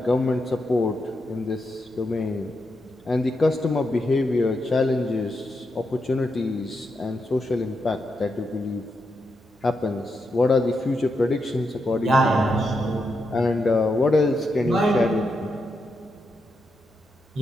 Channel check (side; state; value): both; normal; correlation 0.84